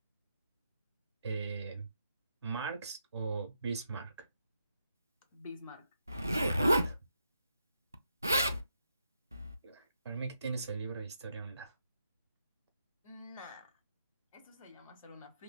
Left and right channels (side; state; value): both; inverted; correlation -0.82